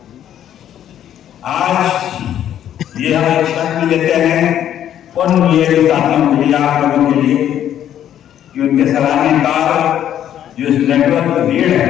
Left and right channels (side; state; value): right; quieter; 10.7 dB